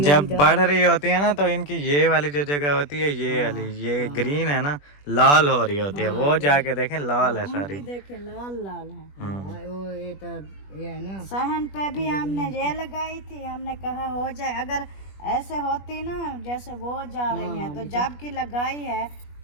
जब बढ़ रही होती है ना तो इनकी ये वाली जो जगह होती है ये वाली ये ग्रीन है ना लाल हो रही होती है, वो जाके देखें लाल है सारी। देखे लाल लाल है। वो ये तो ये है ना सहन पे भी हमने ये लगाई थी, हमने कहा हो जाए, अगर ऐसे होती ना जैसे वो जा रही है तो जब की लगाई है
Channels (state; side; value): late; right; 21 ms